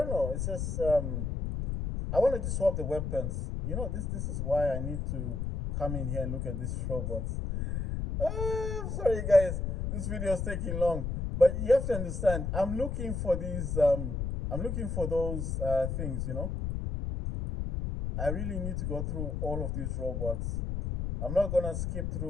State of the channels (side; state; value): left; noise; rumble, 2 dB below the sound